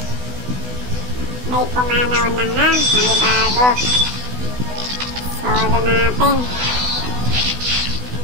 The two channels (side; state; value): left; late; 16 ms